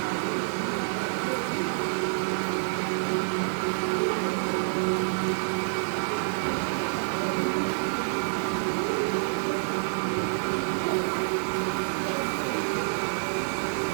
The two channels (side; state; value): left; silent; digital silence